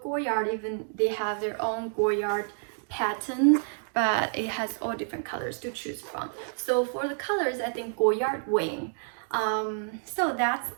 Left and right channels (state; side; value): silent; left; 59 dB below the other